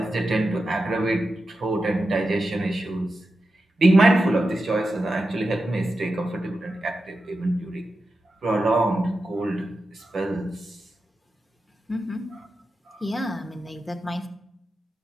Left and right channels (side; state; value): both; normal; correlation 0.90